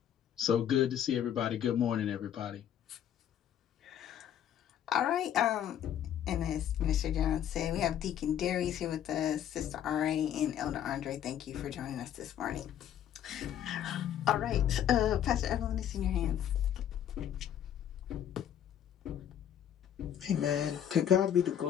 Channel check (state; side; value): quieter; right; 10.0 dB